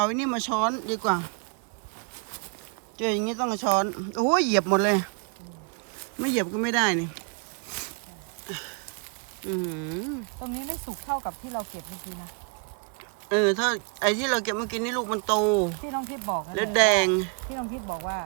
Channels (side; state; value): left; quieter; 35.7 dB